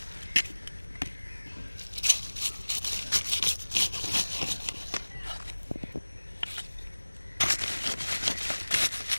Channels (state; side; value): inverted; both; correlation -1.00